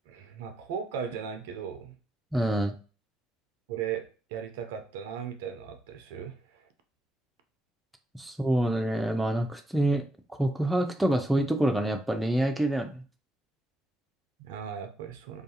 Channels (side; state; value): both; normal; correlation 0.82